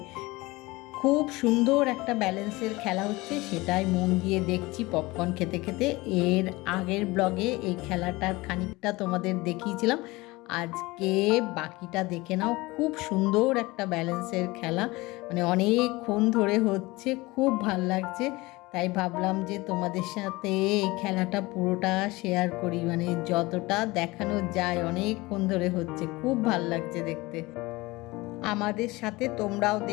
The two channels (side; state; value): right; quieter; 21.7 dB